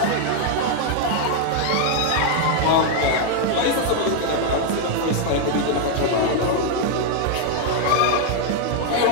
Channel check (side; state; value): both; different; correlation 0.00